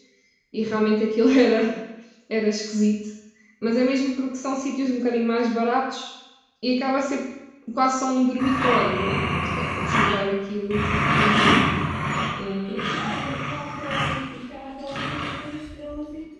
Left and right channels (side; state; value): both; identical; correlation 1.00